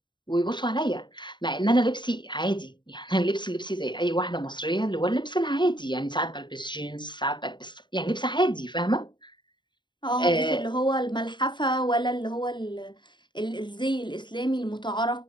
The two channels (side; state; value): right; late; 0.22 ms